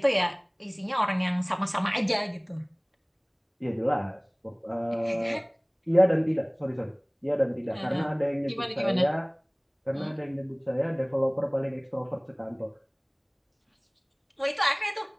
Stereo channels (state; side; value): identical; both; correlation 1.00